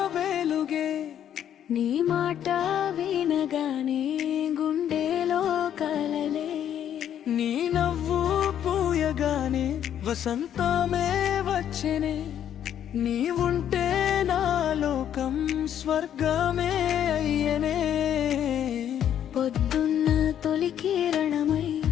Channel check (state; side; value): quieter; right; 10.0 dB